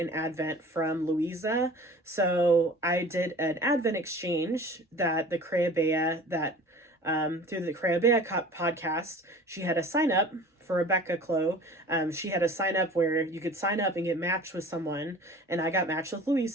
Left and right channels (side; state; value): both; normal; correlation 0.43